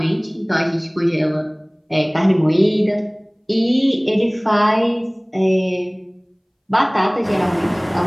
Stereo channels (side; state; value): both; identical; correlation 1.00